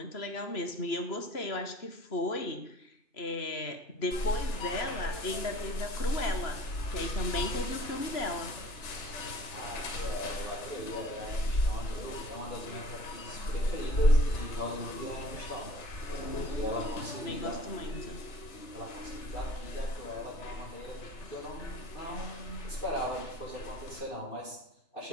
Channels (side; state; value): right; late; 3.0 ms